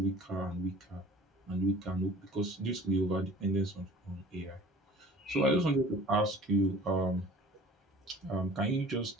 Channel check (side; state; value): both; normal; correlation 0.46